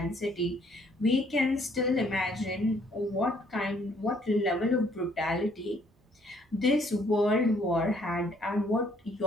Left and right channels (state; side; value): normal; both; correlation 0.64